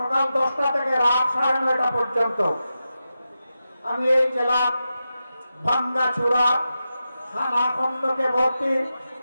10টা থেকে রাত 9:30 পর্যন্ত আমি এই জেলার ভাঙ্গাচুরা খানা খন্দকে ভর্তি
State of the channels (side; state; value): both; inverted; correlation -0.90